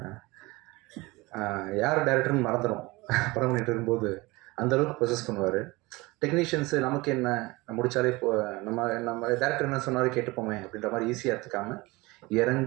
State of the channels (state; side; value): quieter; left; 22.5 dB